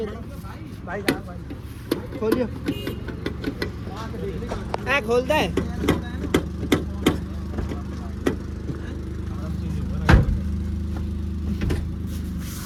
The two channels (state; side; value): identical; both; correlation 1.00